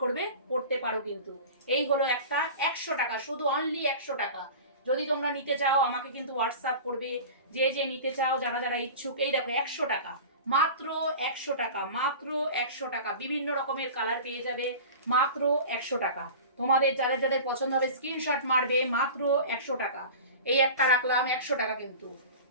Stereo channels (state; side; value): inverted; both; correlation -0.35